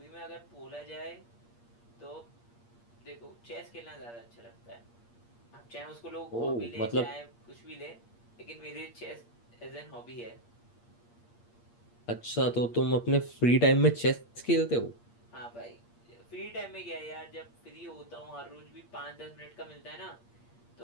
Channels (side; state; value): right; late; 8.5 ms